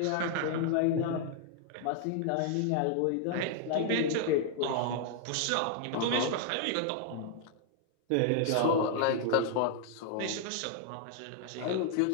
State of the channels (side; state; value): both; different; correlation 0.00